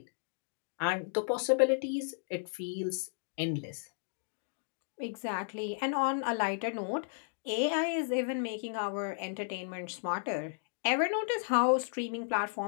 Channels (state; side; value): silent; right; digital silence